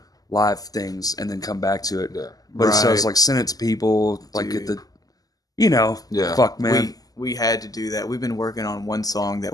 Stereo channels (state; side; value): late; right; 0.18 ms